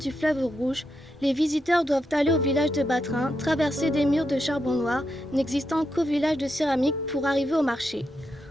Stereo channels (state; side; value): normal; both; correlation 0.84